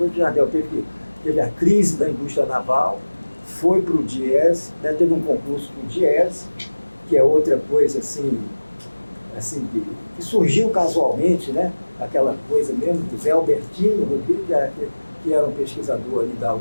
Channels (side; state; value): both; inverted; correlation -1.00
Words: o Jardel teve a crise da indústria naval, foi para o DIES, né? Teve um concurso para o DIES, que é outra coisa assim que surgiu casualmente, né? Aquela coisa mesmo do Zé Albertino Rodrigues, que era um pesquisador ali da